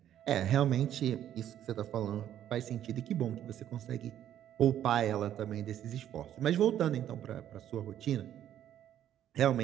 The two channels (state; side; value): quieter; left; 11.0 dB